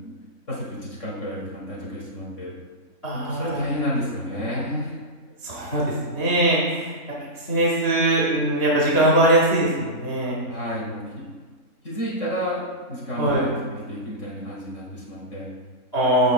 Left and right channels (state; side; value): late; right; 3.6 ms